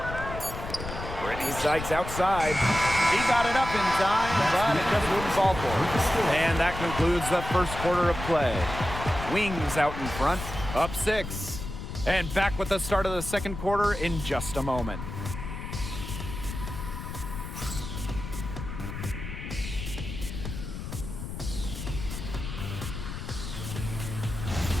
Brittany Sykes outside. He got it up in time, but it just wouldn't fall for her. And that concludes the first quarter of play. Wings out in front, up 6. And back with the start of the second quarter in just a moment.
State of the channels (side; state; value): left; noise; rumble, 7 dB below the sound